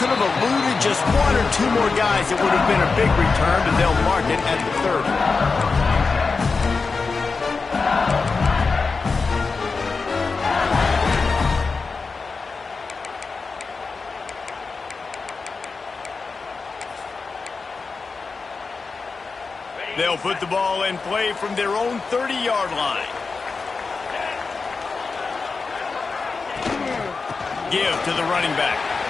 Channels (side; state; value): right; quieter; 4.5 dB